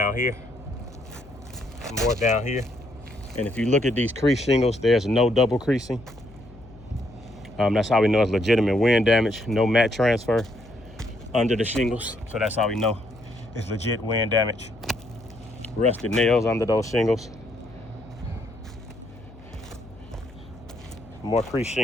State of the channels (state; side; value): noise; left; hum, 21 dB below the sound